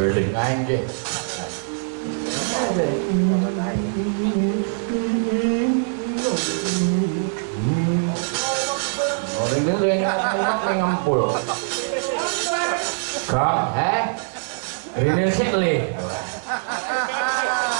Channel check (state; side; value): silent; left; 64 dB below the other